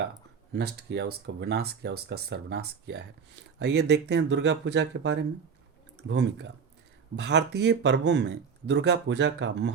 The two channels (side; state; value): left; quieter; 6.2 dB